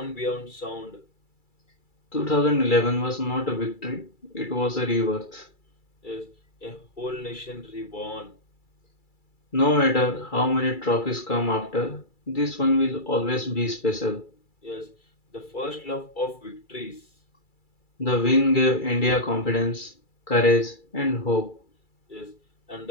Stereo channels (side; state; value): right; late; 2.3 ms